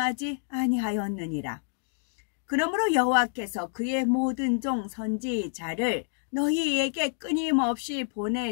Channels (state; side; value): silent; right; digital silence